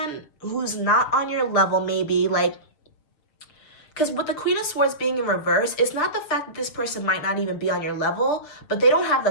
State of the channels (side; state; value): right; late; 6.7 ms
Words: who's not on your level maybe, because with the Queen of Swords being in reverse, it's not the fact that this person might not even be on your level, but they don't have